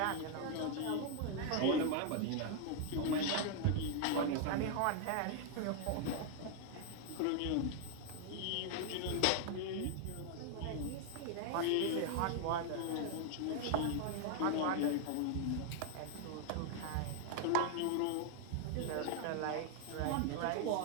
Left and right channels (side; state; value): both; different; correlation 0.00